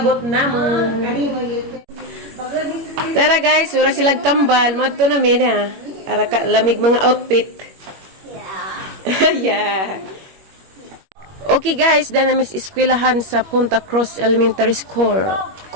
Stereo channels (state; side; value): late; left; 21 ms